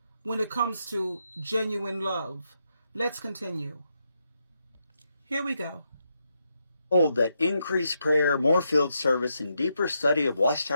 when it comes to genuine love. Let's continue. Here we go. Hold that increased prayer, more field service, and deeper study of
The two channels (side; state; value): both; inverted; correlation -0.82